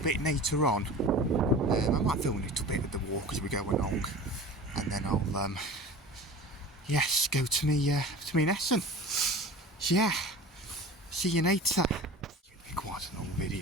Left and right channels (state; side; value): normal; both; correlation 0.37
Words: bit later on. I might film a little bit of the walk as we go along, and then I'll yes, go to me lesson. So yeah, see you later. It'll be quite an old